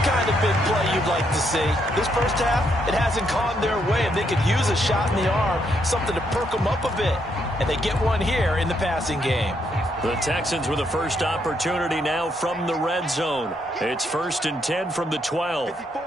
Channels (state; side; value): normal; both; correlation 0.75